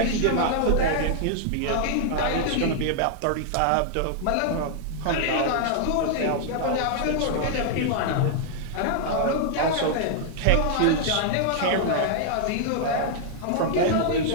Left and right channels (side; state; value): both; different; correlation -0.01